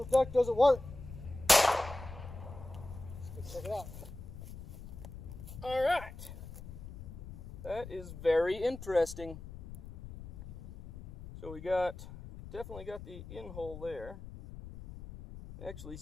duck doesn't work. Let's go check it out. All right. That is very interesting. So we definitely got the in hole there. Actually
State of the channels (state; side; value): noise; left; rumble, 12 dB below the sound